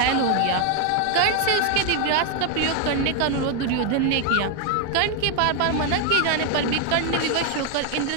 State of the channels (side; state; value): both; different; correlation 0.01